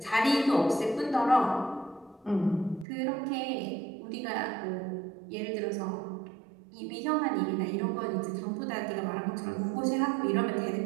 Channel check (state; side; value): drops out; left; at 2.9 s